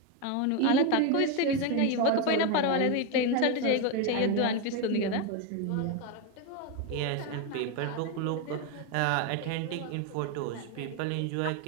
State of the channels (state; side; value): different; both; correlation 0.02